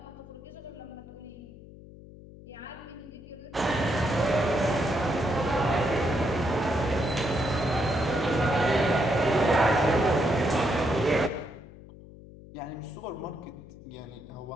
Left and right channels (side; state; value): left; noise; hum, 18 dB below the sound